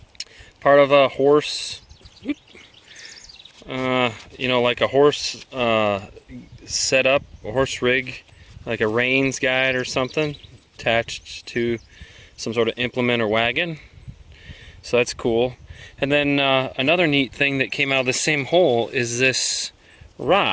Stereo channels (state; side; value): identical; both; correlation 1.00